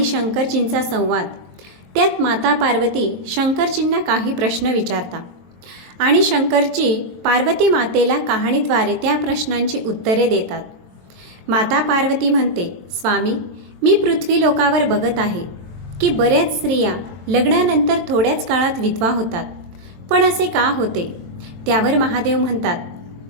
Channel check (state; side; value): late; left; 22 ms